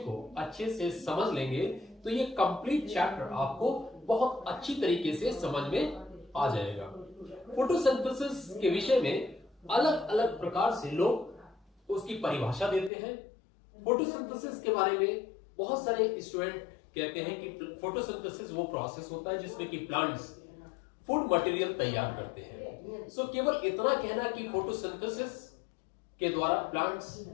को अच्छे से समझ लेंगे तो ये कंप्लीट चैप्टर आपको बहुत अच्छी तरीके से समझ में आ जाएगा। फोटोसिंथेसिस के विषय में अलग अलग प्रकार से लोग उसकी परिभाषा देते हैं। फोटोसिंथेसिस के बारे में बहुत सारे स्टूडेंट कहते हैं कि फोटोसिंथेसिस वो प्रोसेस होता है जिसमें कि प्लांट्स फूड मटेरियल तैयार करते हैं। सो केवल इतना कहना कि फोटोसिंथेसिस के द्वारा प्लांट्स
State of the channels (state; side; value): drops out; right; at 12.9 s